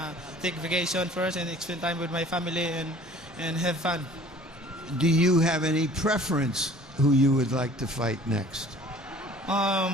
take vacation first and spend time with my family and have fun. Do you have any preference who you would like to fight next? Well,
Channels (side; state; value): both; normal; correlation 0.49